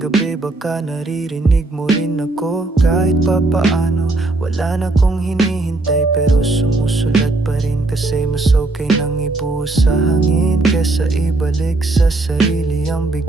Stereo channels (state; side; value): quieter; left; 3.0 dB